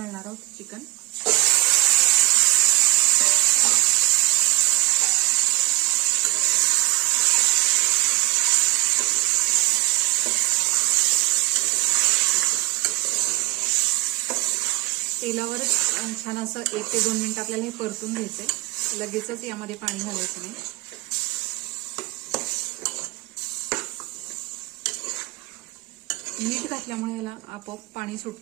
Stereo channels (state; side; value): quieter; left; 21.9 dB